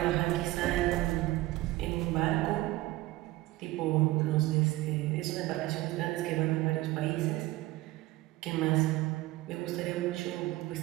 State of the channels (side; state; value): left; quieter; 18.3 dB